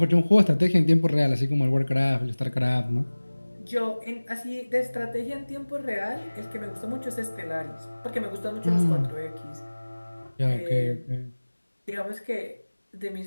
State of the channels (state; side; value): inverted; both; correlation -1.00